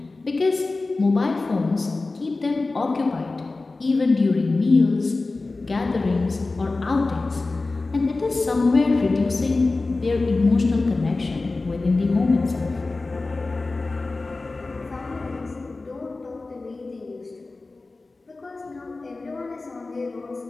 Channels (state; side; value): quieter; right; 3.4 dB